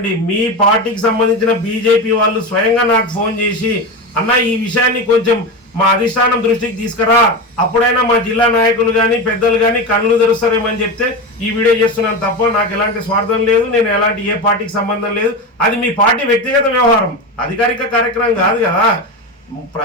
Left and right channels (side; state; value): both; normal; correlation 0.20